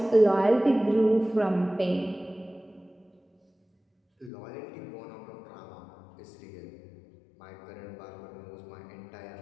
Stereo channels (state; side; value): drops out; right; at 4.3 s